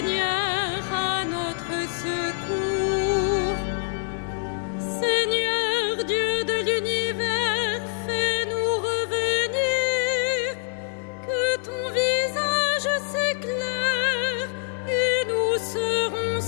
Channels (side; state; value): right; silent; 62 dB below the other